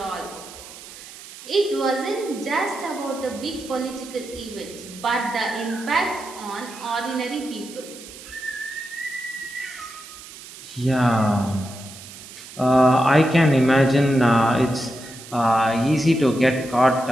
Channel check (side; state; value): right; noise; hiss, 16 dB below the sound